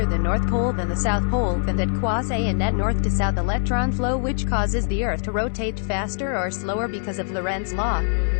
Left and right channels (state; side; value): silent; right; 63 dB below the other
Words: the North Pole than the South Pole, then that causes a net north to south electron flow, which causes the Earth to rotate faster or slower because of Lorentz law.